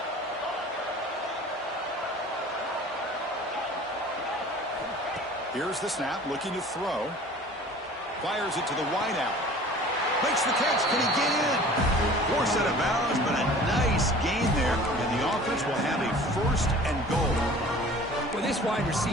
Here's the snap, looking to throw. Fires it to the wideout. Makes the catch. Can he get in? Forced out of bounds, but a nice gain there. And the offense will have a 1st and goal. Well, this wide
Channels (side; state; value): both; normal; correlation 0.45